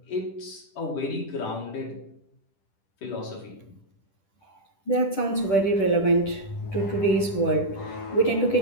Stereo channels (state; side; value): late; right; 10 ms